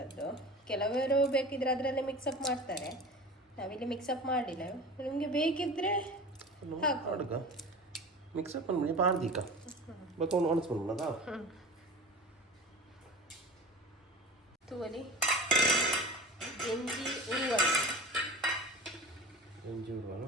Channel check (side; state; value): both; normal; correlation 0.36